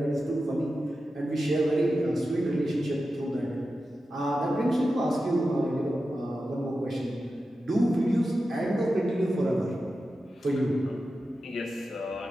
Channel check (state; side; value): normal; both; correlation 0.92